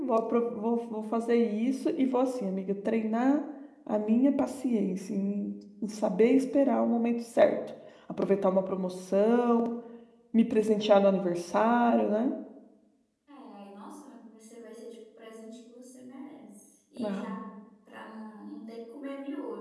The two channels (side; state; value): both; identical; correlation 1.00